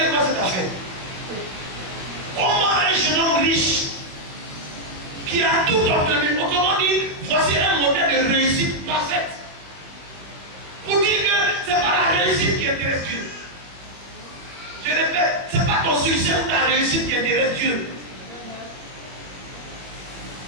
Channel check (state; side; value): late; left; 21 ms